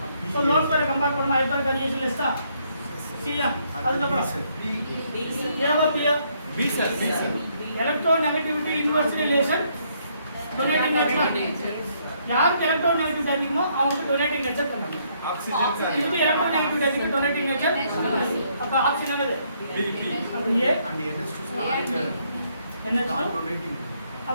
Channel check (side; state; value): both; inverted; correlation -0.71